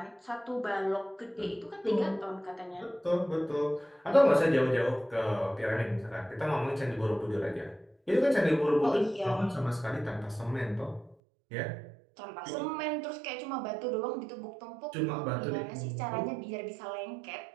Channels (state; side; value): drops out; left; at 11.2 s